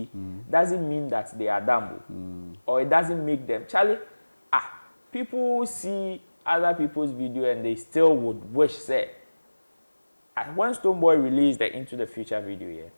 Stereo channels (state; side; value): inverted; both; correlation -1.00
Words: doesn't mean that they are dumb. Or it doesn't make them. Charlie, people see other people's video and they still would wish, say, when Stonebwoy released the Into the Future video,